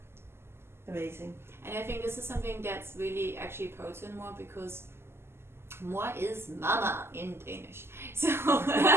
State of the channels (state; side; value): late; left; 0.12 ms